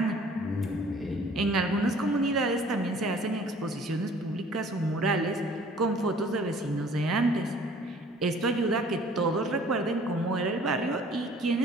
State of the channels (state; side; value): normal; both; correlation 0.53